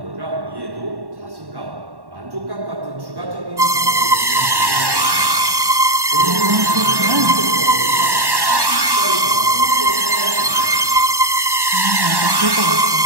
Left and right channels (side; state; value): left; late; 1.1 ms